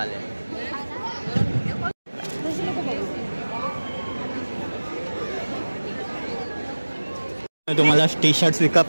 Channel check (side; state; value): both; inverted; correlation -1.00